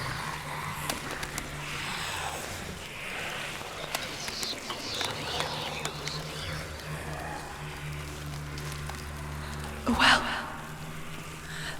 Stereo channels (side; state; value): both; identical; correlation 1.00